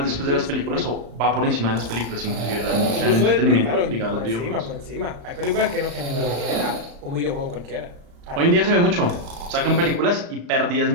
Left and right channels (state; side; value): late; left; 35 ms